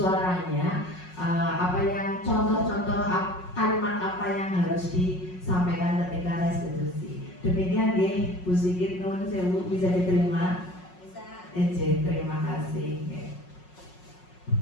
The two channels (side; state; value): right; late; 5.5 ms